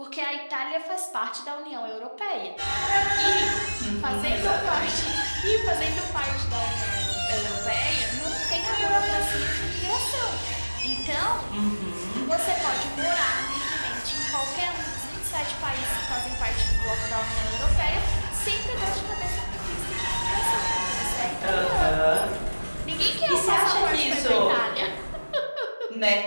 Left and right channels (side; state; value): both; inverted; correlation -1.00